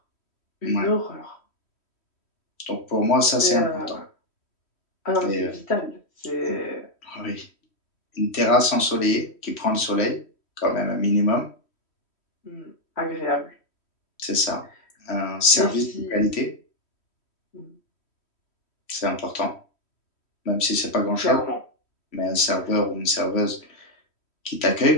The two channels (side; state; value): right; late; 3.1 ms